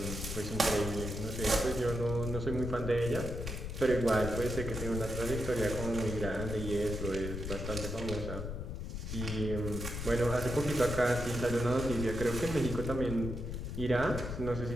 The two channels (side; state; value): left; noise; rumble, 5 dB below the sound